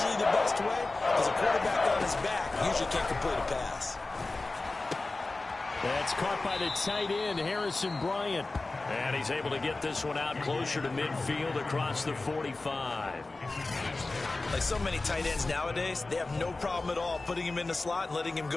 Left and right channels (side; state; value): right; quieter; 3.3 dB